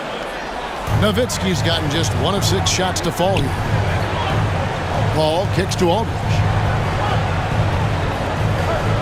Nowitzki's gotten just 1 of 6 shots to fall here. Paul kicks to Aldridge.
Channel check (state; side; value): identical; both; correlation 1.00